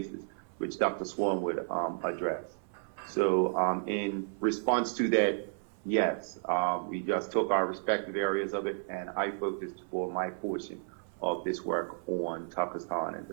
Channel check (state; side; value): silent; left; 56 dB below the other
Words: which Dr. Swan would address. So in response to that, yes, we just took our respective areas of it, and I focused for my portion of this work on Pakistan and